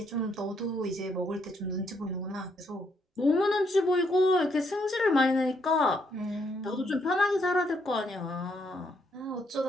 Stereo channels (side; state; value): both; normal; correlation 0.74